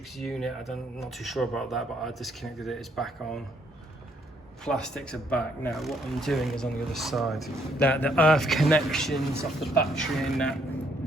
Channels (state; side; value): normal; both; correlation 0.70